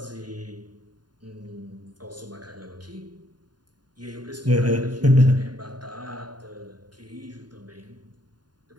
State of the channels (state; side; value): late; left; 0.70 ms